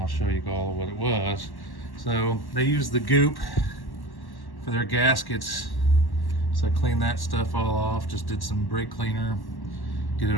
I'll show you all what it was. So they used the goop for their gaskets, so I cleaned that stuff all off, just did some brake cleaner, get it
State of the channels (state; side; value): late; right; 1.1 ms